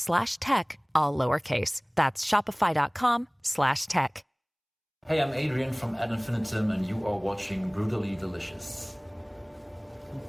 all lowercase. That's shopify.com/tech. Hey, I'm Adrian from Ad Infinitum, and you are watching Brutally Delicious.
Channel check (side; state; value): both; identical; correlation 1.00